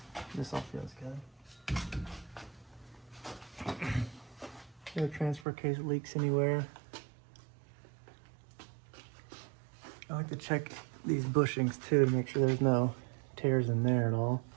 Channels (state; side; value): drops out; left; at 5.5 s